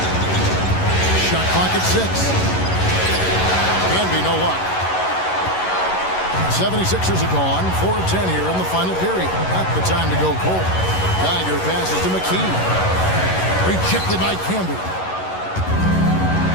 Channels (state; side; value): late; right; 11 ms